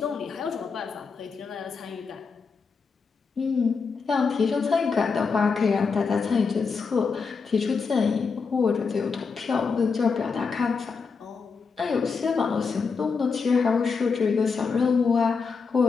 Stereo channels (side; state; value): right; quieter; 5.1 dB